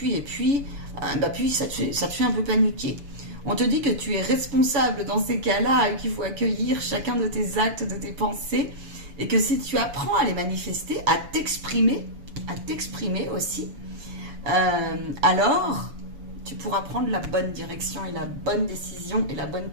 te fait un peu paniquer. On te dit que tu es responsable dans ces cas-là et qu'il faut accueillir chacun de tes actes, de tes pensées, et que si tu apprends à les manifester, à t'exprimer, à t'exprimer aussi, alors tu pourras prendre la bonne direction et la bonne décision et la bonne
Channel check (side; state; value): left; late; 7.0 ms